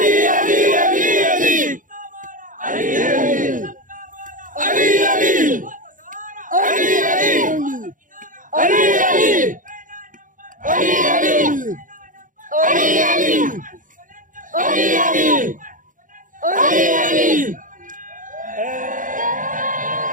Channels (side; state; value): left; late; 0.38 ms